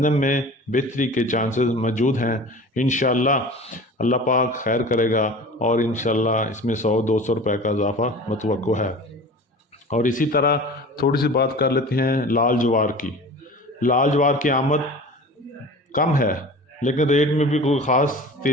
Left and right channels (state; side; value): normal; both; correlation 0.39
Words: میں بہتری کے چانسز موجود ہیں۔ انشاءاللہ اللہ پاک خیر کرے گا اور انشاءاللہ اس میں 100-200 روپے کا اضافہ متوقع ہے۔ اور اسی طرح تھوڑی سی بات کر لیتے ہیں لال جوار کی۔ لال جوار کی آمد کم ہے، لیکن ریٹ میں بھی کوئی خاص